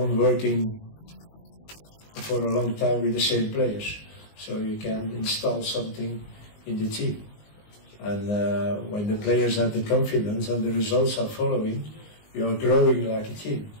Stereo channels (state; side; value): late; right; 19 ms